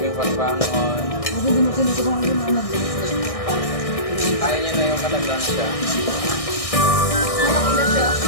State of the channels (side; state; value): right; late; 1.6 ms